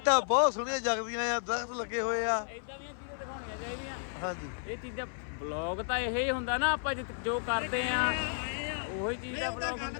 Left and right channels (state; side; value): silent; right; 56 dB below the other